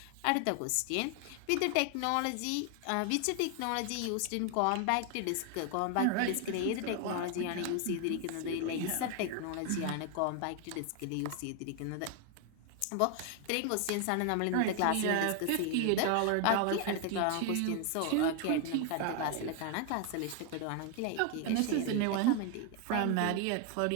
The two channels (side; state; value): both; different; correlation 0.01